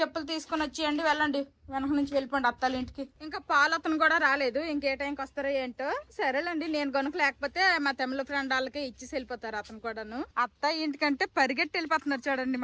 తీసుకుని వచ్చేయండి, వెళ్ళండి వెనక నుంచి వెళ్ళిపోండి అత్తల ఇంటికి. ఇంకా పాలు అతను కూడా రాలేదు, ఇంకే టైంకి వస్తారో ఏంటో. సరేలేండి, నేను కనుక లేకపోతే మా తమిళ ఫ్రెండ్ వాళ్ళకి ఇచ్చేసి వెళ్ళిపోతారు అతను కూడాను. అత్త ఇంటికంటే పరిగెట్టి వెళ్ళిపోతున్నారు చూడండి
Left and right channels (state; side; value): identical; both; correlation 1.00